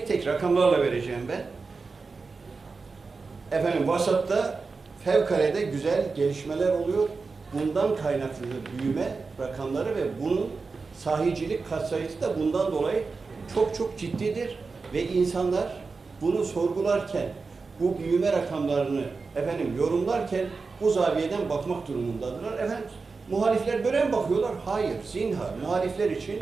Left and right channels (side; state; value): left; quieter; 4.4 dB